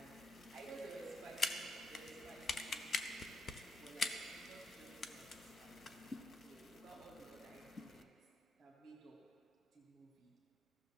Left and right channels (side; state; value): both; normal; correlation 0.81